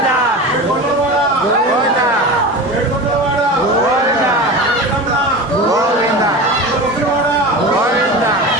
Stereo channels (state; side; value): normal; both; correlation 0.29